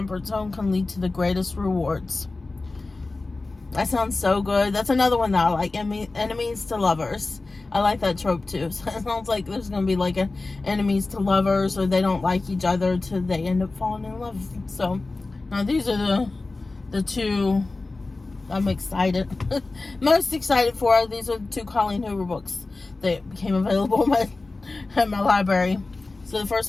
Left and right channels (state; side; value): quieter; right; 3.4 dB